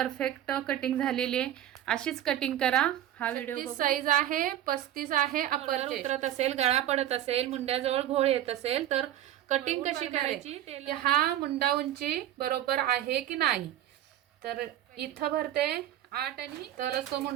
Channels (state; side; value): quieter; left; 12.3 dB